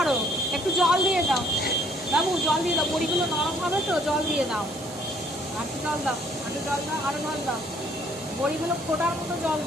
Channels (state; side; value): noise; right; hiss, 16 dB below the sound